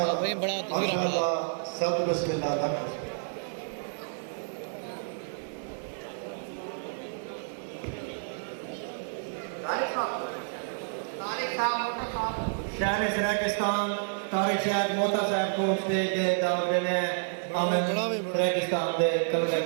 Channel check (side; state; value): left; silent; digital silence